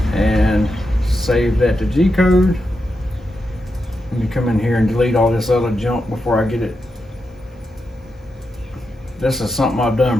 and save that to G code. Let me come in here and delete all this other junk before I get it. This is something I've done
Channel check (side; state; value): both; normal; correlation 0.86